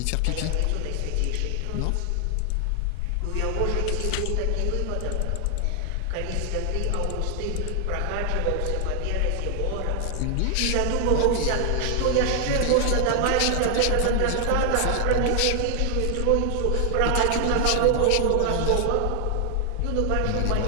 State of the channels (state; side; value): different; both; correlation 0.00